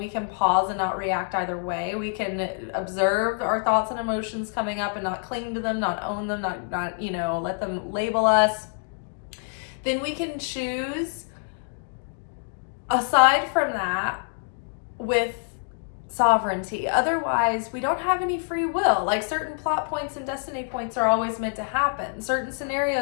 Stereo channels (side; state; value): right; silent; 61 dB below the other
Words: can pause and not react either way. We can observe our thoughts and emotions coming up and not cling to them, not own them, not let them label us. Then we can choose, aside from that, with sovereignty. Otherwise, we don't have any free will. Like certain plot points and destiny points are always meant to happen. Certain